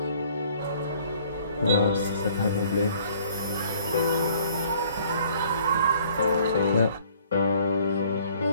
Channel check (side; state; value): both; inverted; correlation -0.58